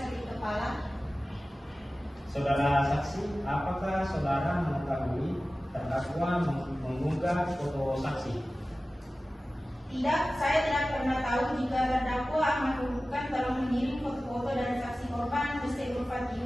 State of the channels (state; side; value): normal; both; correlation 0.96